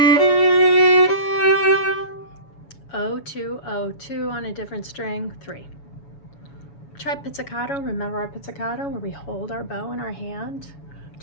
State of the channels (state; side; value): late; right; 7.1 ms